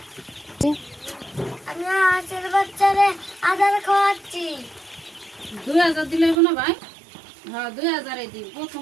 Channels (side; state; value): left; drops out; at 6.4 s